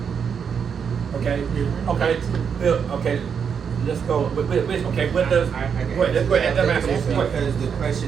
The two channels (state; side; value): quieter; left; 6.9 dB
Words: Okay. Okay. Bill, okay. let's go. Okay, what does? I get Go ahead. Let's go ahead. Let me ask you It's one question. Because the